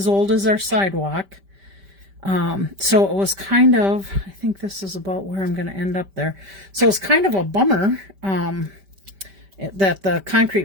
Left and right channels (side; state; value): left; late; 5.1 ms